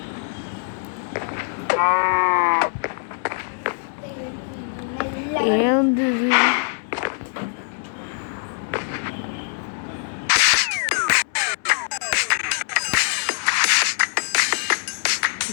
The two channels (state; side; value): silent; right; digital silence